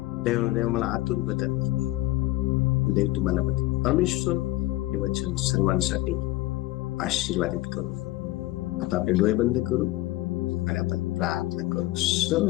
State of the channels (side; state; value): right; quieter; 17.8 dB